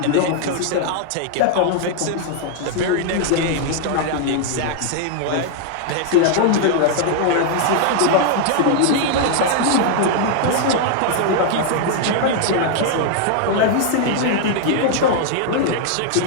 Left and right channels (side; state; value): both; different; correlation 0.00